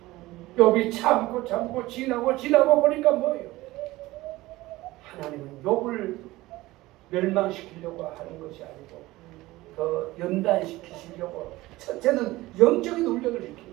욥이 참고 지나고 보니까 뭐예요? 하나님은 욥을 멸망시키려고 하는 것이 아니고 더 연단시키시려고 첫째는 영적인 훈련을 시킨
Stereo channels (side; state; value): left; quieter; 18.6 dB